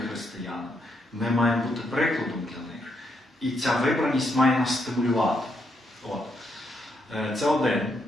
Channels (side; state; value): both; normal; correlation 0.78